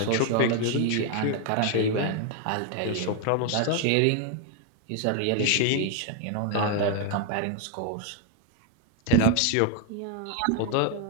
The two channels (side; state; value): both; different; correlation 0.00